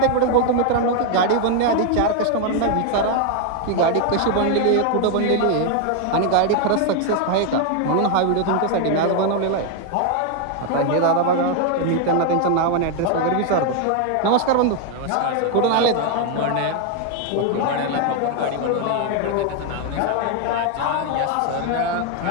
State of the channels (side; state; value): both; different; correlation 0.01